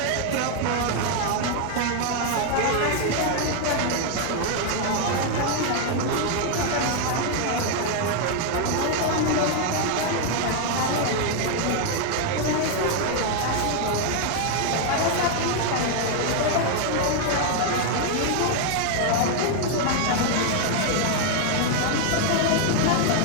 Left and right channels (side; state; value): both; different; correlation 0.00